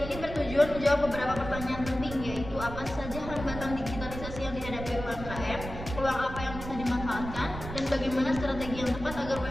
ini bertujuan menjawab beberapa pertanyaan penting, yaitu apa saja hambatan digitalisasi yang dihadapi UMKM, peluang apa yang bisa dimanfaatkan, dan bagaimana strategi yang tepat agar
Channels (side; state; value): right; noise; rumble, 9 dB below the sound